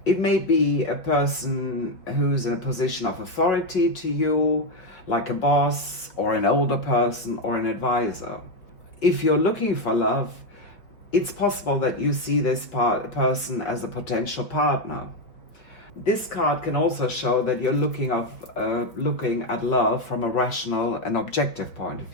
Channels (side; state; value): right; late; 4.7 ms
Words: It may be a person who's in a position of authority to you, like a boss or an older person or an advisor. If you're looking for love, it's possible that you see this person as a potential partner. This card can also show that you're looking at love from a rational and objective point of